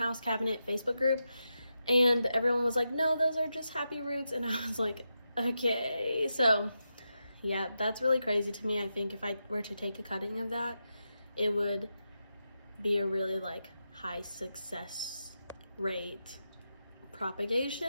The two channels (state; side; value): inverted; both; correlation -0.88